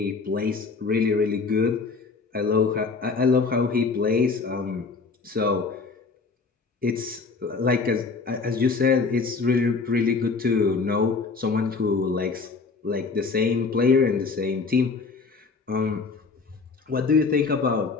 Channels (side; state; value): right; quieter; 4.6 dB